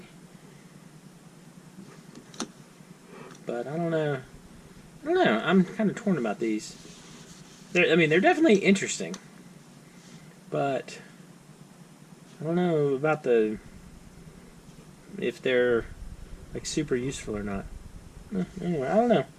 But I don't know. I'm kind of torn about these. They're definitely interesting, but I don't know about if they're like super useful or not. Anyway, I don't know.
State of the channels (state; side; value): identical; both; correlation 1.00